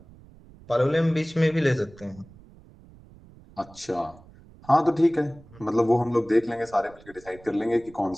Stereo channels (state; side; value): noise; right; rumble, 23 dB below the sound